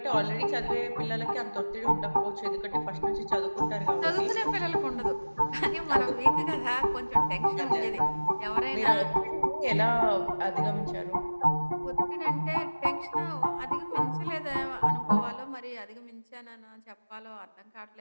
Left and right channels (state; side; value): inverted; both; correlation -1.00